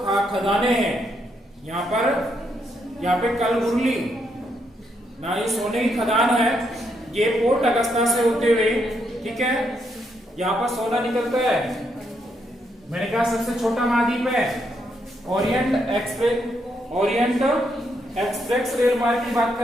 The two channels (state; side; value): normal; both; correlation 0.77